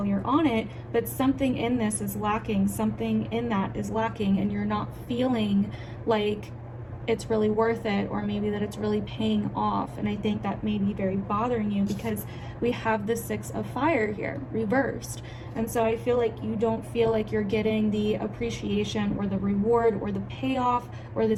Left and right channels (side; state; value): both; identical; correlation 1.00